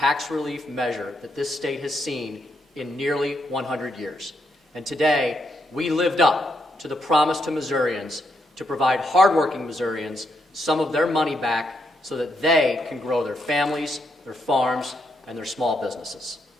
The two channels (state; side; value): normal; both; correlation 0.79